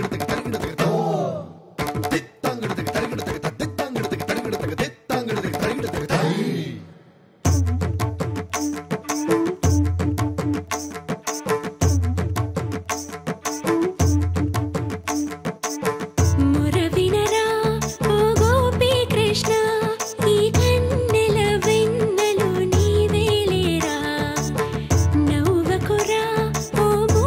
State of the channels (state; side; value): identical; both; correlation 1.00